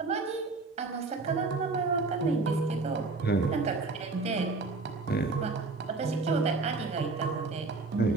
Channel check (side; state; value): left; quieter; 3.8 dB